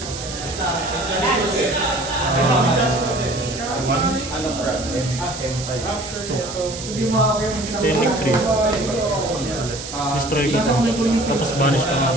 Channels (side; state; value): right; noise; hiss, 10 dB below the sound